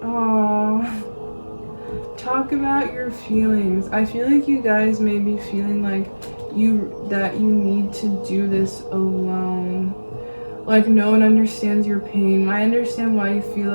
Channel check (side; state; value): both; inverted; correlation -1.00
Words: Aww. Talk about your feelings. I feel like you guys may be feeling like you need to do this alone. Like no one understands your pain. I understand why you feel